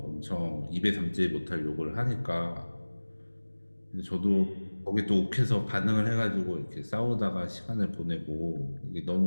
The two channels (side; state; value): both; inverted; correlation -1.00